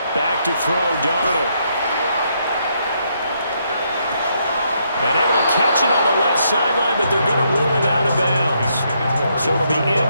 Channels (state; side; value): inverted; both; correlation -0.75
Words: Back to throw, Darnold. And able to catch it on the left sideline, but they're going to rule it out of bounds. So it'll be